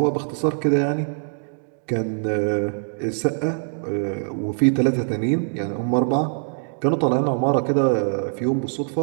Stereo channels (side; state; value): left; silent; digital silence